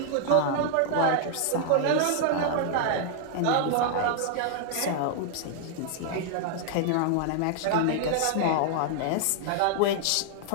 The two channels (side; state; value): both; different; correlation 0.00